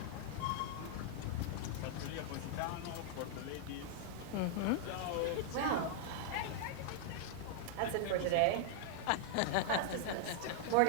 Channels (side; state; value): both; different; correlation -0.01